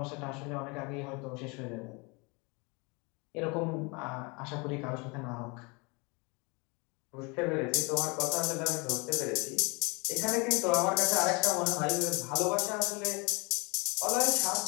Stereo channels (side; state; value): right; quieter; 29.0 dB